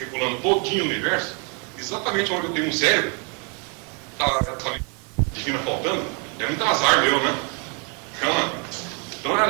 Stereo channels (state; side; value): quieter; left; 35.7 dB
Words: todinho o universo, exatamente onde eu tenho um cérebro, está essa mente divina faltando. É muito azar meu, né? Então,